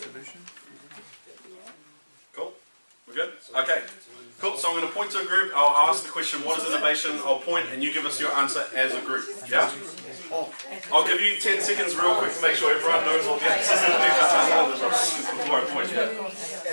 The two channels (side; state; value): both; inverted; correlation -1.00